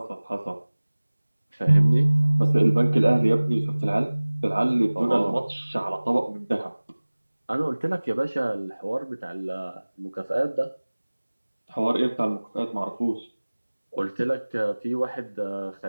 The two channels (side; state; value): both; inverted; correlation -1.00